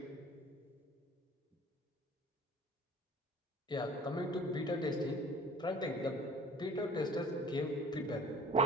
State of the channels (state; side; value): normal; both; correlation 0.46